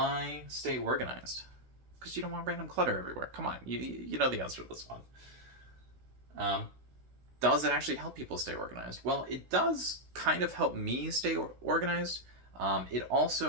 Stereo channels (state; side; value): late; left; 16 ms